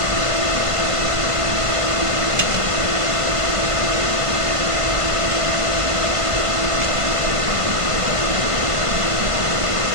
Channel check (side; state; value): left; late; 1.5 ms